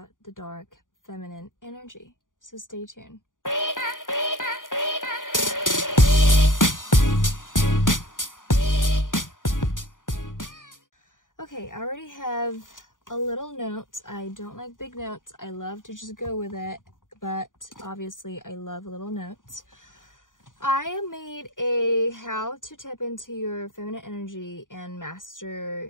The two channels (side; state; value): right; late; 0.88 ms